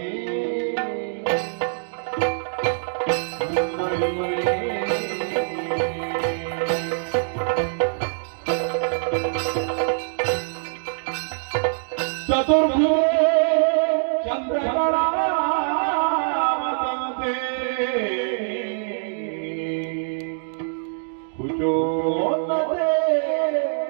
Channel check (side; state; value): left; silent; digital silence